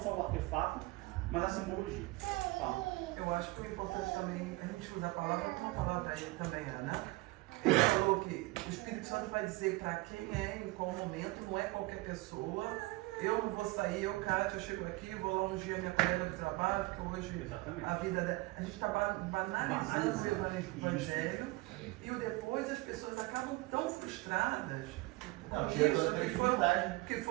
só o artefato, mas a simbologia. Fala. Eu acho que é importante também a gente usar a palavra como uma palavra aí também, Ana. Ele falou que o Espírito Santo vai dizer para quem é, em qual momento, não é qualquer pessoa. Eu não vou sair, Kátia, eu chego aqui, vou lá ungir a minha colega de trabalho, porque hoje a vida dela. A gente está banalizando o Evangelho e depois as pessoas acabam tão frustradas. Não, que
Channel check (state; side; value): quieter; left; 22.4 dB